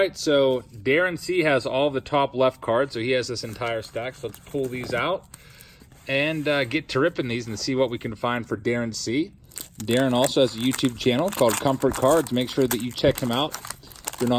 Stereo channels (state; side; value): identical; both; correlation 1.00